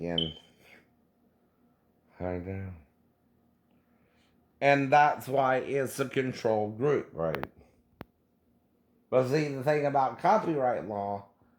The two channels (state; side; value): identical; both; correlation 1.00